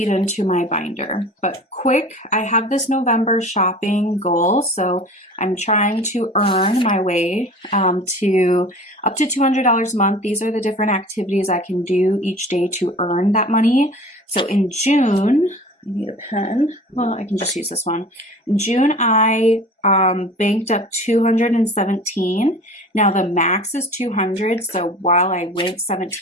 into my binder. But quick, I have this November shopping goal. So I'm trying to earn my way to up to $200 a month. These are the different activities I can do each day to earn that money. So in June, I need a pen. Well, I can just use this one. In June, I banked up 217. Now the max is 200. So while I went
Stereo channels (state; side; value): normal; both; correlation 0.42